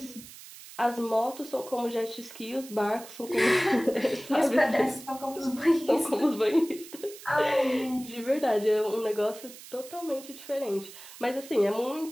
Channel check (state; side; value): noise; right; hiss, 16 dB below the sound